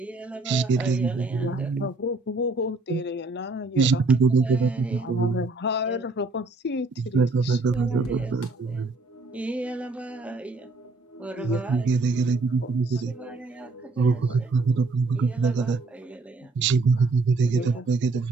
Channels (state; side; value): quieter; left; 3.4 dB